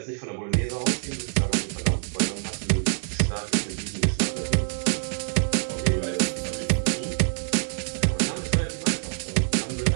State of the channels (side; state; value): left; silent; digital silence